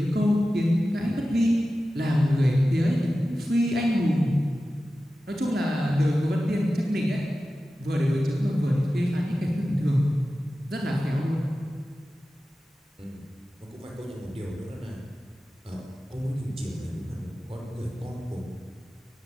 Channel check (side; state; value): both; normal; correlation 0.94